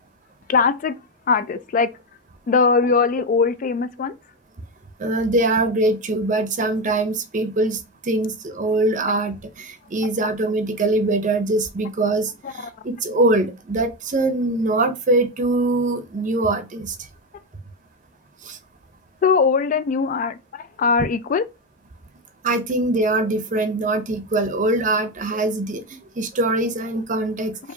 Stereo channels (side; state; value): both; normal; correlation 0.12